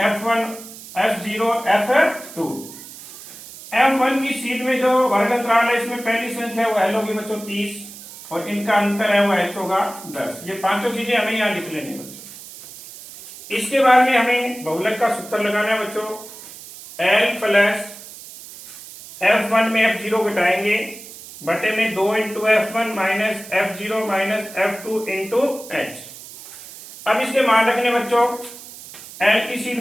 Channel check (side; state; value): right; noise; hiss, 16 dB below the sound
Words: F1, F0, F2। F1 की सीट में जो वर्ग अंतराल है इसमें पहली संख्या वो L होगी बच्चों 30 और इनका अंतर है वो H होगा 10। ये पांचों चीजें हमें यहाँ लिख लेनी है बच्चों। इसके बाद में हमें बहुलक का सूत्र लगाना है बच्चों। L प्लस F1 में F0 घटाएंगे बटे में 2 into F1 minus F0 minus F2 into H। अब इसके मान रखने बच्चों L की